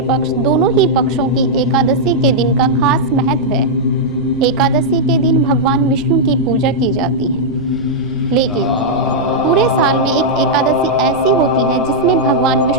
पक्ष दोनों ही पक्षों की एकादशी के दिन का खास महत्व है। एकादशी के दिन भगवान विष्णु की पूजा की जाती है, लेकिन पूरे साल में एक एकादशी ऐसी होती है जिसमें भगवान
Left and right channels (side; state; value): right; noise; rumble, 19 dB below the sound